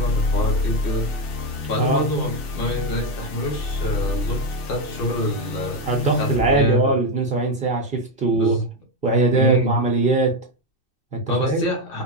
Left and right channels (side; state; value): right; late; 2.6 ms